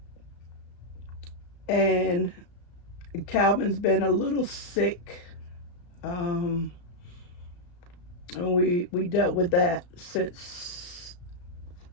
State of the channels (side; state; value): right; late; 34 ms